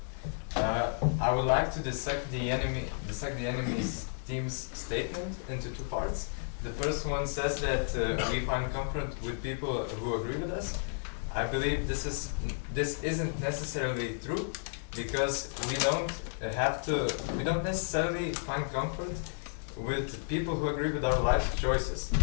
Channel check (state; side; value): silent; right; 56 dB below the other